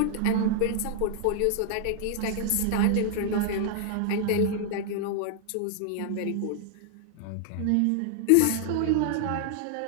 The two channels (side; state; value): both; different; correlation 0.00